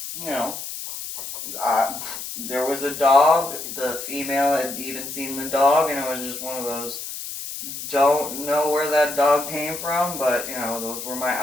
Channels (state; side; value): noise; left; hiss, 8 dB below the sound